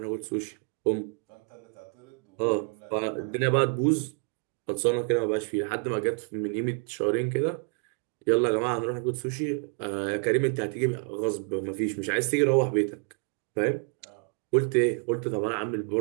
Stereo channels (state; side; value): quieter; left; 38.9 dB